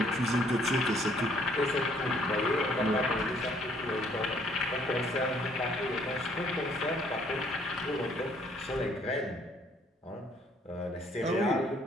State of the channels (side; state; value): both; normal; correlation 0.63